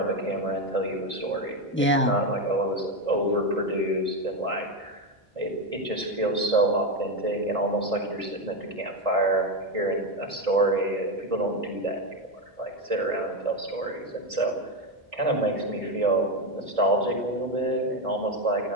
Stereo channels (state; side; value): normal; both; correlation 0.11